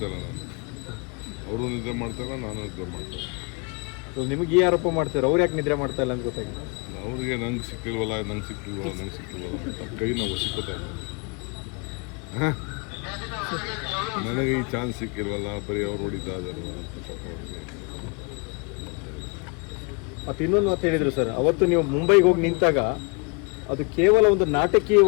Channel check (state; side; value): quieter; right; 32.4 dB